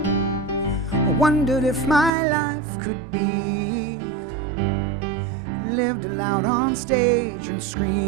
I wondered if my life could be lived aloud on stage and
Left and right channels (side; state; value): left; drops out; at 2.1 s